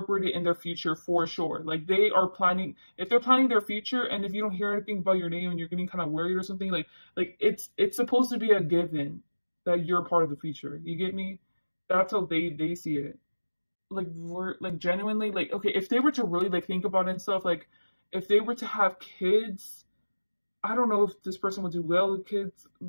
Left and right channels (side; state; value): both; inverted; correlation -1.00